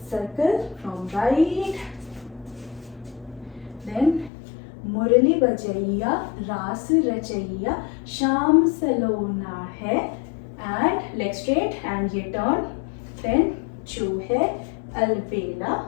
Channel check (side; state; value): right; drops out; at 4.3 s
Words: सर्कल फ्रॉम राइट, देन मुरली बजैया रास रचैया, शाम सलोना है, एंड लेग स्ट्रेट, एंड ये टर्न, देन जो है अलबेला,